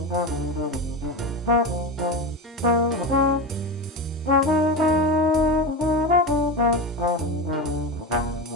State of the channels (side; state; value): both; normal; correlation 0.21